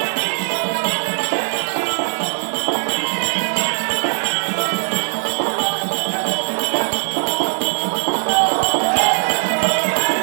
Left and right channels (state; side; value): silent; left; digital silence